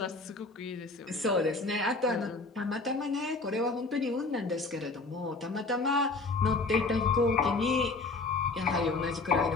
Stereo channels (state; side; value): quieter; right; 3.6 dB